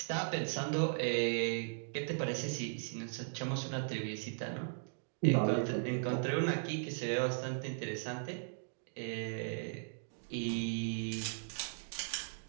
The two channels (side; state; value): left; silent; digital silence